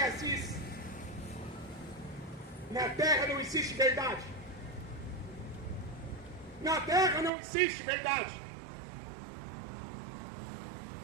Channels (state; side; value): drops out; left; at 7.3 s